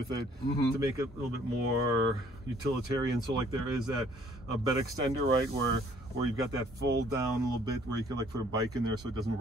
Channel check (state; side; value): normal; both; correlation 0.60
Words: it to make it a little bit more utilitarian. So like there is that bed extender, right, where you've got that fold down a little bit where you can like put a bike in there so it doesn't